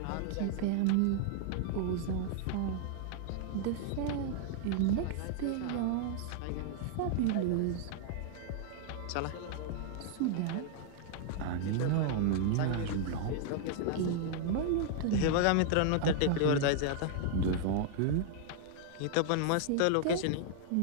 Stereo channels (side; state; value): both; different; correlation -0.01